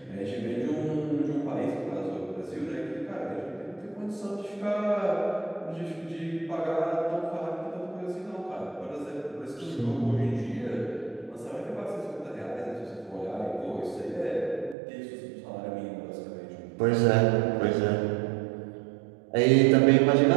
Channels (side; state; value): left; drops out; at 14.8 s